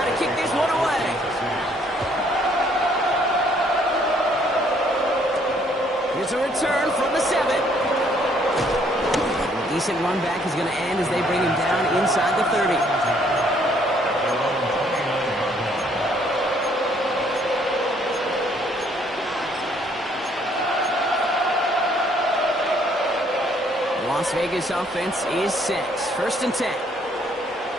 to kick this one away. Here's a return from the 7. A decent run back is going to end as they bring him down inside the 30. Las Vegas offense is set. First and 10.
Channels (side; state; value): both; normal; correlation 0.65